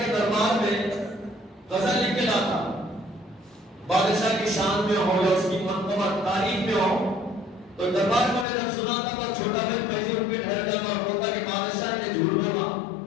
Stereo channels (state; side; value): drops out; right; at 8.5 s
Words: کے دربار میں غزل لکھ کے لاتا، بادشاہ کی شان میں ہو یا اس کی منقبت تعریف میں ہو، تو دربار میں جب سناتا تو چھوٹا بھائی فیضی اٹھ کے ٹھہر جاتا اور بولتا کہ بادشاہ نے جھوٹ بولا،